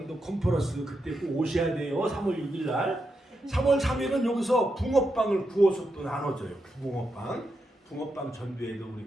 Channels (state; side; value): normal; both; correlation 0.85